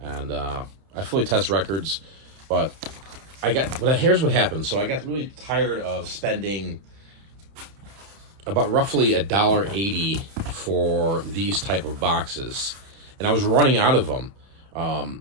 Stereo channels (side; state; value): left; late; 30 ms